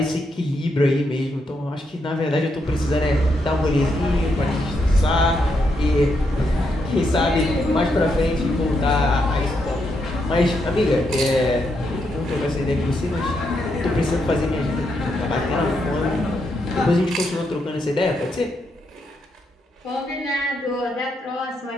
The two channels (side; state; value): both; normal; correlation 0.80